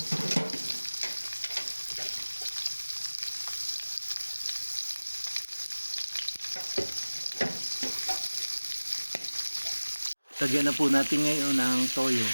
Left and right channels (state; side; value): inverted; both; correlation -1.00